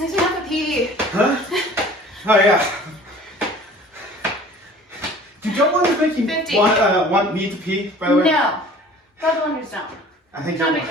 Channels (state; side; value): normal; both; correlation 0.47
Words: me have to pee. Huh? Oh yeah. Do double unders make you 50. want me to pee, by the way? No. Double unders don't. I think Jumping you're...